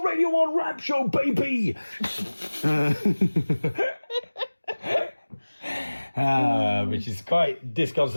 1 rap show, baby! Which is quite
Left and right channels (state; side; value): inverted; both; correlation -1.00